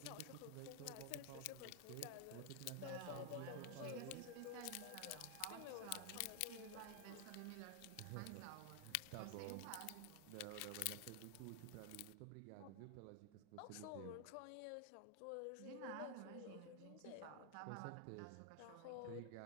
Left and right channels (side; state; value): both; different; correlation 0.00